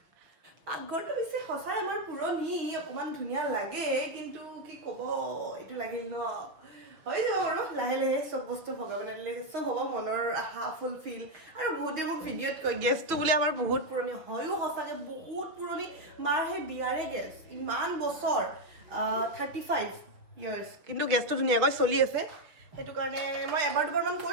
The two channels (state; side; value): late; left; 6.2 ms